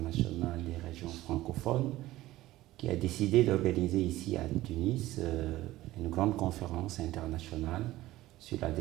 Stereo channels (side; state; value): left; quieter; 16.5 dB